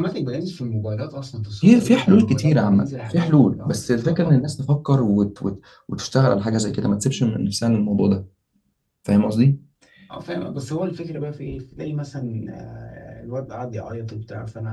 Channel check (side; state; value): both; identical; correlation 1.00